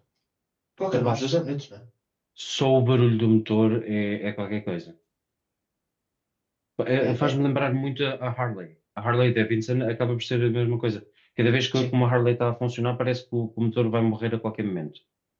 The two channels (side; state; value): both; identical; correlation 1.00